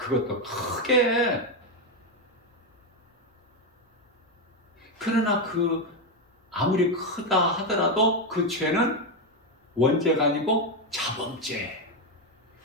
크게. 그러나 그 아무리 크다 하더라도 그 죄는 원죄가 아니고 자범죄.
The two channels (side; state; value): both; normal; correlation 0.07